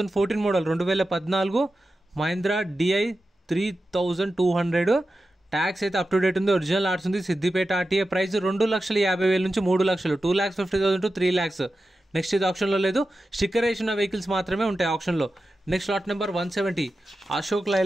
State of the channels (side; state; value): both; normal; correlation 0.92